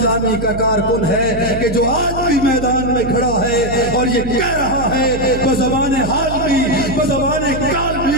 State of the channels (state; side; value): noise; right; hum, 9 dB below the sound